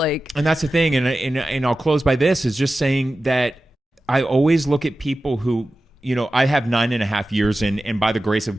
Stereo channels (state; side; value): normal; both; correlation 0.94